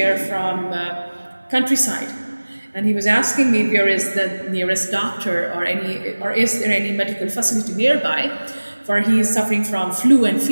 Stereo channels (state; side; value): inverted; both; correlation -1.00